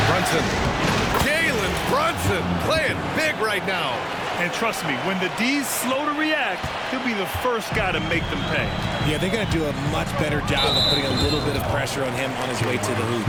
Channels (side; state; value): both; identical; correlation 1.00